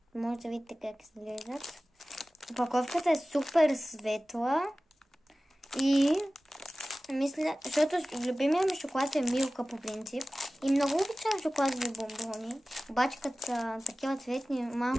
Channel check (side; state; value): both; normal; correlation 0.97